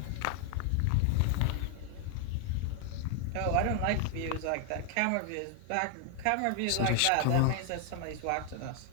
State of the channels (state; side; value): different; both; correlation 0.00